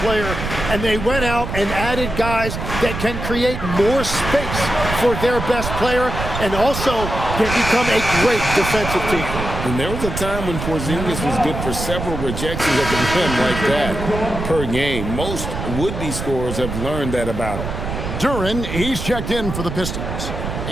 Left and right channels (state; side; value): noise; right; rumble, 5 dB below the sound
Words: player and they went out and added guys that can create more space for their best player and also can become a great defensive team. And there was a time when Porzingis was good for several rejections at the rim like that per game. Most would-be scorers have learned that about him. Duren, he's checked in for the Pistons.